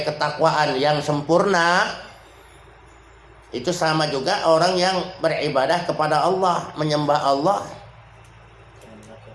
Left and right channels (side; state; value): both; identical; correlation 1.00